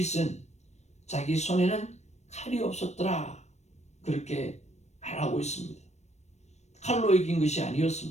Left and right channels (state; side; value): late; right; 0.32 ms